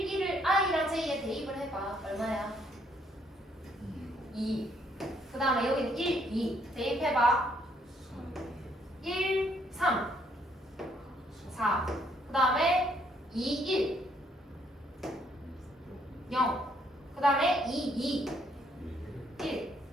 1을 I랑 J에 대입을 해봐. 얼마야? 2. 그 다음에 여기는 1, 2. 대입해봐. 1, 3. 4. 그 다음에 2, 1. 0. 그 다음에 2, 2. 1,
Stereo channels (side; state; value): both; normal; correlation 0.69